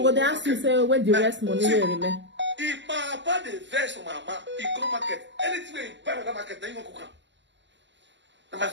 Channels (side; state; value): left; late; 0.53 ms